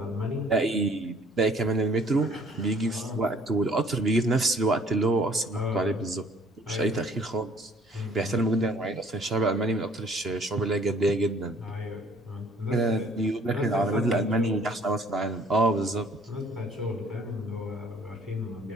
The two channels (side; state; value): both; normal; correlation 0.58